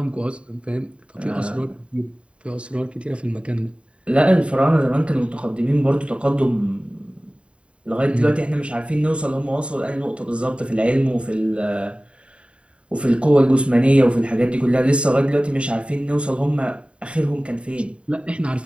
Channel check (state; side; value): late; left; 0.059 ms